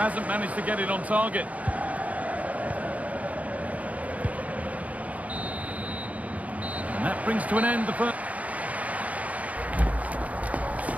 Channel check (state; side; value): late; left; 0.070 ms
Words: managed to get it on target. And that brings to an end the first.